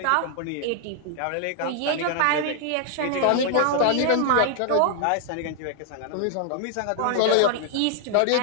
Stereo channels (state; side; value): different; both; correlation 0.00